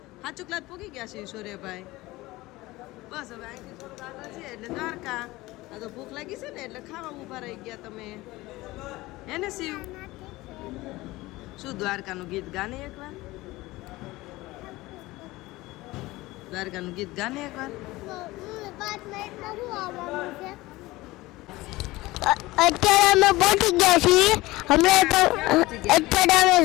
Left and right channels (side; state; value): right; quieter; 19.6 dB